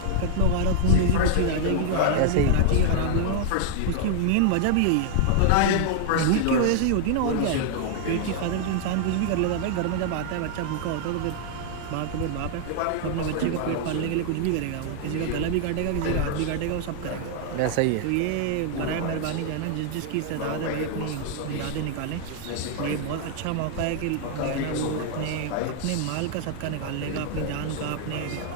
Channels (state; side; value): different; both; correlation 0.00